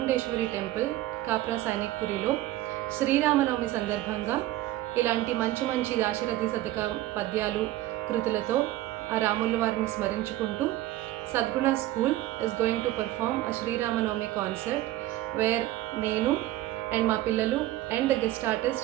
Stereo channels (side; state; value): left; quieter; 15.5 dB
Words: టెంపుల్ కాప్రా సైనిక్పురిలో శ్రీరామనవమి సందర్భంగా ఇలాంటి మంచి మంచి దాశరథి శతక పద్యాలు కృతులతో ఆ రాముల వారిని స్మరించుకుంటూ Sadguna school is going to perform a Sriramanavami concert where నేను అండ్ మా పిల్లలు and the guest